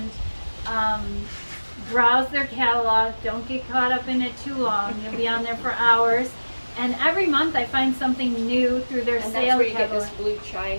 browse their catalog. Don't get caught up in it too long. You'll be on there for hours. And every month I find something new through their And sale that's where you get catalog. this blue chai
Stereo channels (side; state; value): both; inverted; correlation -1.00